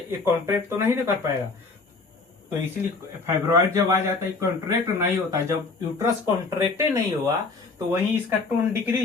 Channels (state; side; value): quieter; right; 4.0 dB